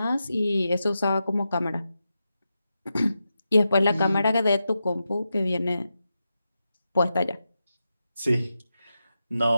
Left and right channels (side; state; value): both; inverted; correlation -0.89